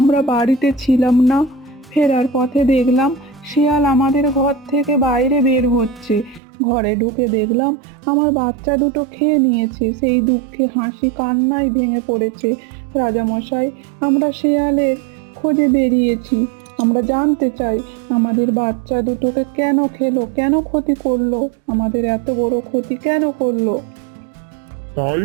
বাড়িতে ছিলাম না, ফেরার পথে দেখলাম শেয়াল আমাদের ঘর থেকে বাইরে বের হচ্ছে। ঘরে ঢুকে দেখলাম আমার বাচ্চা দুটো খেয়ে নিয়েছে। সেই দুঃখে হাসি কান্নায় ভেঙে পড়েছে। রাজামশাই, আমরা শেয়ালের খোঁজে বেরিয়েছি। আমরা জানতে চাই আমাদের বাচ্চা দুটোকে কেন খেলো, কেন ক্ষতি করলো, আমাদের এত বড় ক্ষতি কেন করলো? তাই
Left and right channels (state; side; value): drops out; left; at 6.4 s